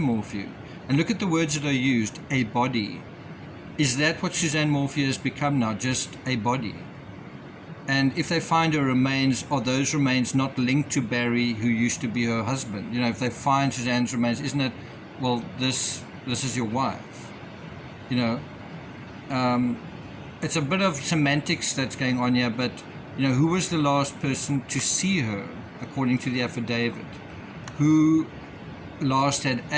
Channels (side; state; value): both; identical; correlation 1.00